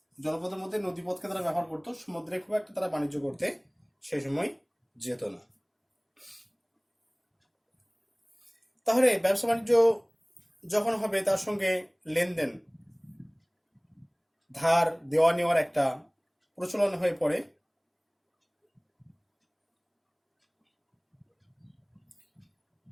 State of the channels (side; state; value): both; identical; correlation 1.00